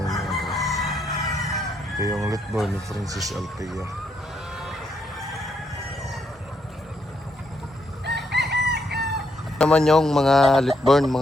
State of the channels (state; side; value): normal; both; correlation 0.76